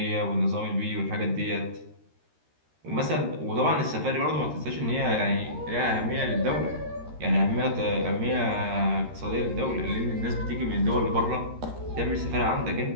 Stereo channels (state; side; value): late; left; 13 ms